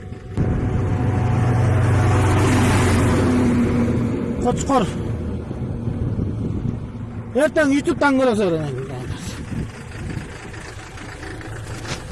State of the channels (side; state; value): both; identical; correlation 1.00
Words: Koçkor. Erten YouTube'dan görürsün.